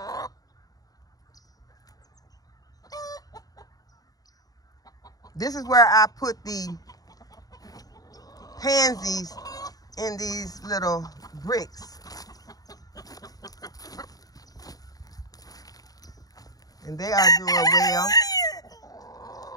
This is where I put the pansies in these little bricks. And they are doing well.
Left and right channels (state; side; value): late; right; 0.18 ms